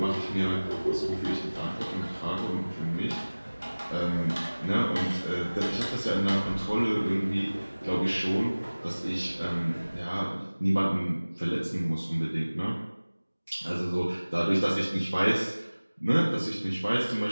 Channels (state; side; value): inverted; both; correlation -1.00